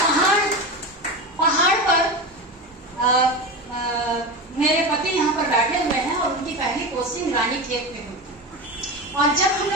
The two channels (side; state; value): both; normal; correlation 0.23